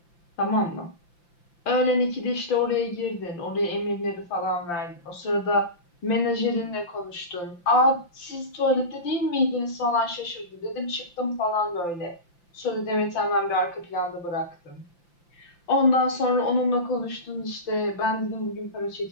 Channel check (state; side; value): late; right; 5.8 ms